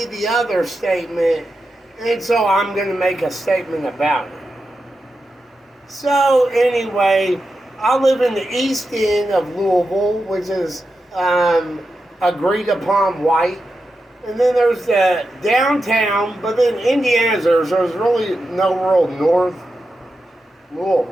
the other statement, and so I'm going to make a statement about it. So, anyway, I live in the east end of Louisville, which is agreed upon white. And then there's the downtown, but then Indiana's there's really no real north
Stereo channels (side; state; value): both; normal; correlation 0.89